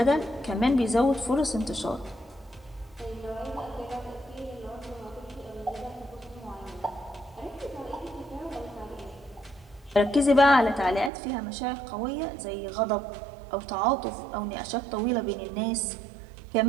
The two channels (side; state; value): left; drops out; at 11.1 s